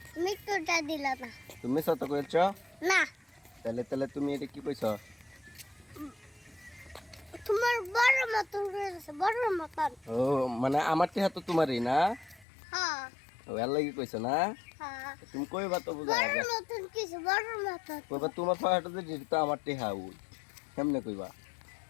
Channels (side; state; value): right; drops out; at 12.5 s